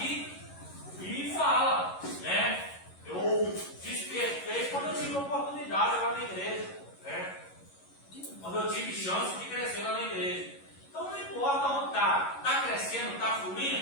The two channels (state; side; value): late; right; 11 ms